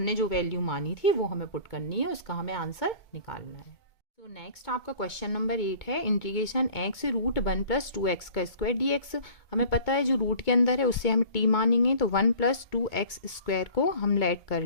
जो वैल्यू मानी थी वो हमें पुट करनी है, उसका हमें आंसर निकालना है। तो नेक्स्ट आपका क्वेश्चन नंबर 8 है, integration x root 1 plus 2x का स्क्वायर डी एक्स। हमें पता है जो रूट के अंदर है उससे हम t मानेंगे, तो 1 प्लस 2x स्क्वायर को हम लेट कर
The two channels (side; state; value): right; late; 2.2 ms